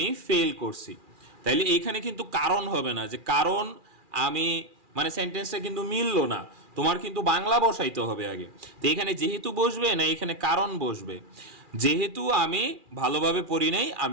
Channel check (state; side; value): late; left; 2.4 ms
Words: ফেল করছি। তাইলে এইখানে কিন্তু কারণ হবে না, যে কারণ আমি, মানে সেন্টেন্সটা কিন্তু মিললো না, তোমার কিন্তু বাংলা বসাইতে হবে আগে। তো এখানে যেহেতু বসবে না, এখানে কারণ বসবে। যেহেতু আমি ভালোভাবে পড়ি নাই,